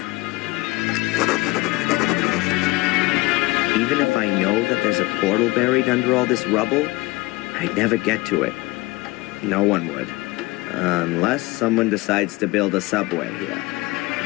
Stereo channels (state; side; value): quieter; right; 21.9 dB